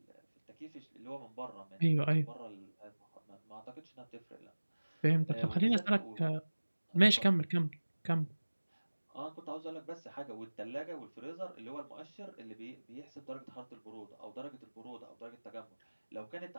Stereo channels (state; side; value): inverted; both; correlation -1.00